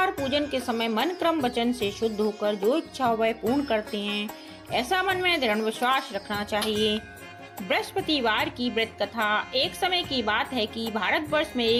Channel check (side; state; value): both; identical; correlation 1.00